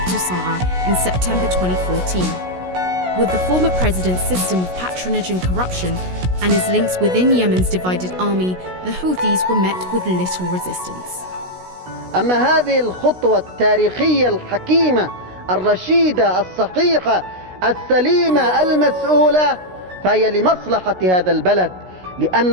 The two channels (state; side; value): late; left; 16 ms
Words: Sanaa in September 2014. With the former president's system of patronage and corruption and his links within Yemen's divided army, the Houthis were met with little resistance. أما هذه الخطوة التاريخية الحكيمة الرشيدة الصحيحة السليمة المسؤولة فهي لمصلحة هذا البلد،